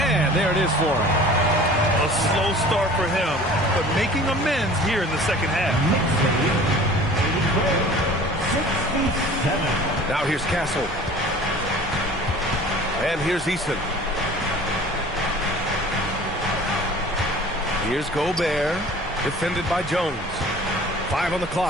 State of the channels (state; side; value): normal; both; correlation 0.45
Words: there it is for him. A slow start for him, but making amends here in the second half. Now here's Castle. And here's Eason. Here's Gobert, defended by Jones. 5 on the